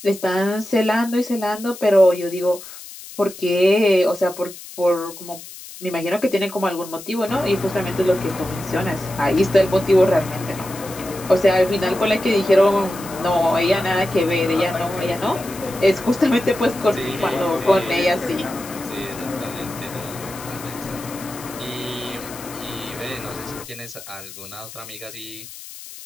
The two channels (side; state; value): left; noise; hiss, 15 dB below the sound